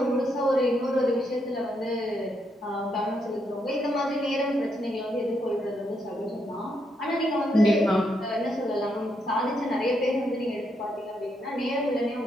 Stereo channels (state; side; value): normal; both; correlation 0.78